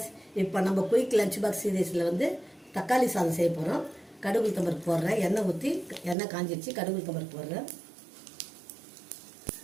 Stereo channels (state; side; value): drops out; left; at 6.2 s